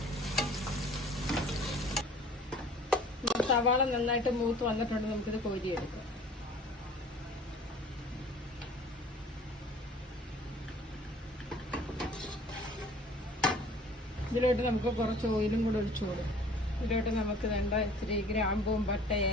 സവാള നന്നായിട്ട് മൂത്ത് വന്നിട്ടുണ്ട്. നമുക്കിത് കോരിയെടുക്കാം. ഇതിലോട്ട് നമുക്ക് കുറച്ച് ഓയിലും കൂടെ ഒഴിച്ചു കൊടുക്കും. ഇതിലോട്ട് നമുക്ക് വേണ്ട ഇച്ചിരി ഗ്രാമ്പും പട്ട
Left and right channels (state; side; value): normal; both; correlation 0.50